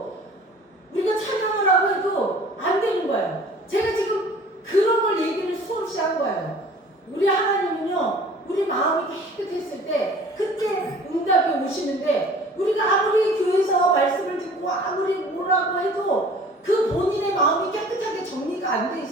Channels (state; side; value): normal; both; correlation 0.48